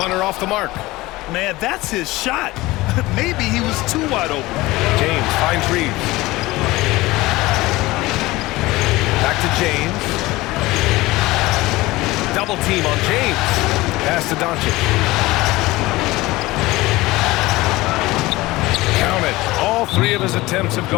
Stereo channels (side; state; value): right; quieter; 19.7 dB